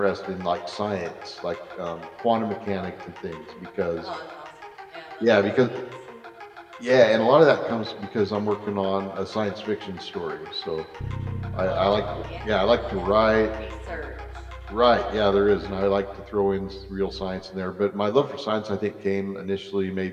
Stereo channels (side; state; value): both; identical; correlation 1.00